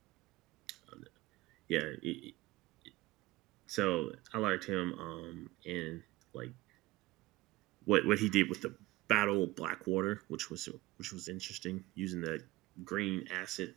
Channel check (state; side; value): quieter; left; 19.0 dB